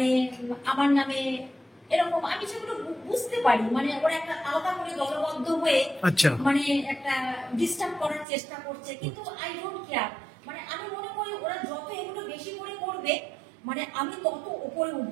আমার নামে এরকম আমি সেগুলো বুঝতে পারি, মানে ওরা একটা আলাদা করে দলবদ্ধ হয়ে মানে একটা ডিস্টার্ব করার চেষ্টা করছে, কিন্তু আই ডোন্ট কেয়ার। মানে আমি মনে করি ওরা যত এগুলো বেশি করে করবে মানে আমি তত উপরে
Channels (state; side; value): drops out; left; at 8.2 s